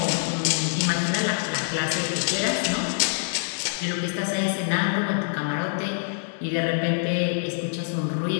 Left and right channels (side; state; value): right; silent; digital silence